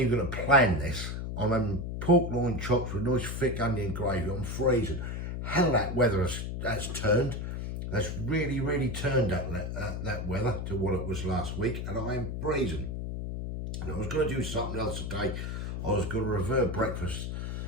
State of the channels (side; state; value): left; noise; hum, 4 dB below the sound